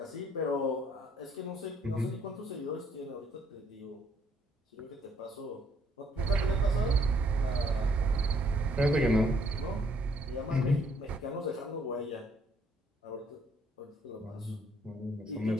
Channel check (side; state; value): both; normal; correlation 0.67